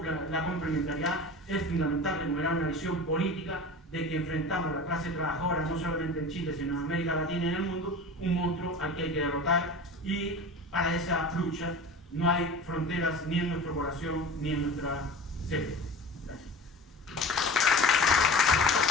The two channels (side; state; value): both; normal; correlation 0.34